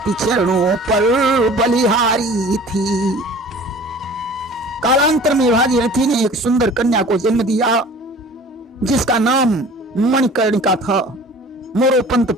चरणों पर बलिहारी थी। कालांतर में भागीरथी ने एक सुंदर कन्या को जन्म दिया जिसका नाम मणिकर्णिका था। मोरोपंत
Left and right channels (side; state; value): both; normal; correlation 0.45